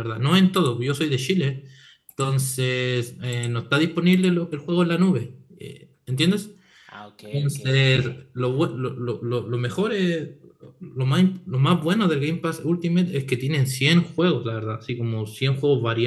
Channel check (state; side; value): identical; both; correlation 1.00